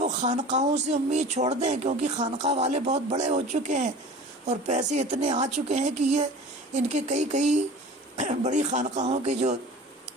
خانقاہوں سے امید چھوڑ دیں، کیونکہ خانقاہ والے بہت بڑے ہو چکے ہیں اور پیسے اتنے آ چکے ہیں کہ یہ ان کے کئی بڑی خانقاہوں کے جو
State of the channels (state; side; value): normal; both; correlation 0.40